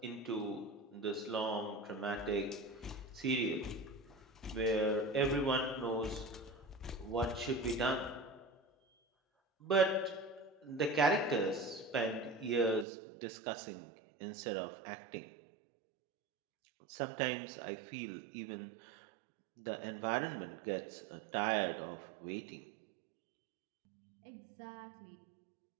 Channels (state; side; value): drops out; left; at 12.9 s